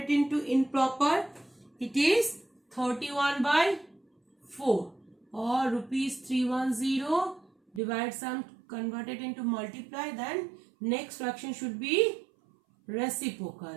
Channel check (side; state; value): left; drops out; at 7.8 s